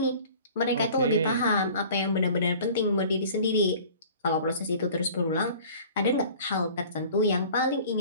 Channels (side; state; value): both; inverted; correlation -0.46